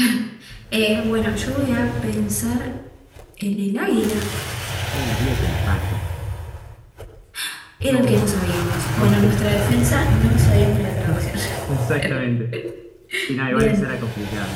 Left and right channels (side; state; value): both; identical; correlation 1.00